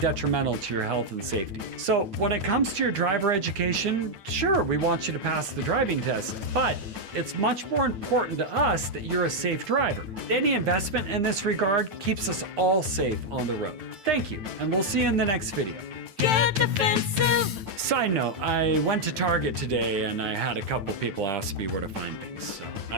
to your health and safety. So when it comes to your driver education, sure, we want you to pass the driving test, but it's much more important to us that you're a safe driver. Any investment in this regard keeps us all safe on the road. Thank you, and we'll see you in the next video. Get defensive. Side note, I went to Target today and I had a couple people ask me where to find things, so I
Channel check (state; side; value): late; left; 9.1 ms